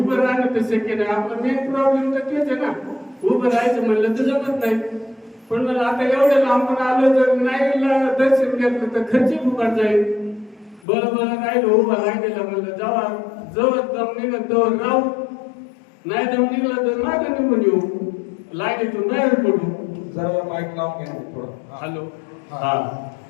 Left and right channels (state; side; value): drops out; right; at 10.8 s